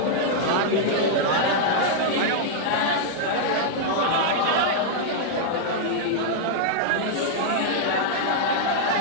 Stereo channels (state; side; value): different; both; correlation -0.01